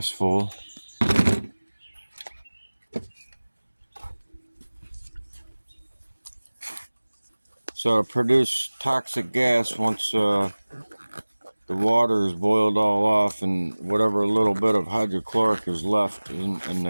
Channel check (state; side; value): inverted; both; correlation -1.00